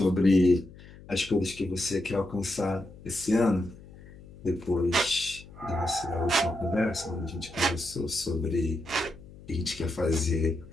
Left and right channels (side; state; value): left; noise; hum, 19 dB below the sound